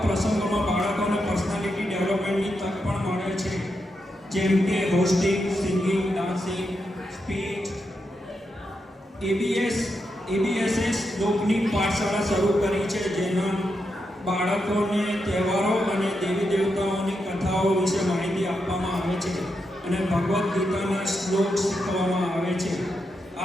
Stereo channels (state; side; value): normal; both; correlation 0.85